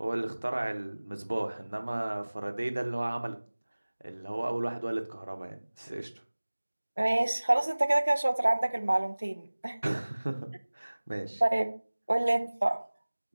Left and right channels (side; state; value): both; inverted; correlation -1.00